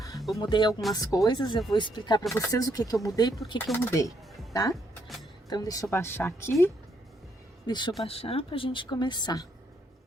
Eu mudei algumas coisas, eu vou explicar pra vocês o que que eu mudei e por que que eu mudei, tá? Então, deixa eu baixar aqui, deixa eu baixar pra gente começar.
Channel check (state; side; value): normal; both; correlation 0.74